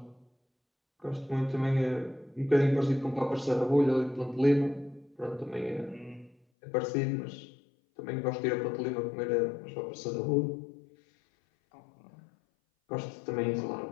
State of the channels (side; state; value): right; drops out; at 6.4 s